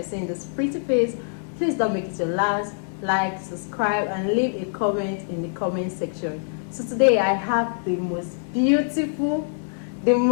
seeing this pretty face, please don't make it your last. Like, subscribe, and leave a comment in the comment section. So today I have the most beautiful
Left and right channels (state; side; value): silent; right; digital silence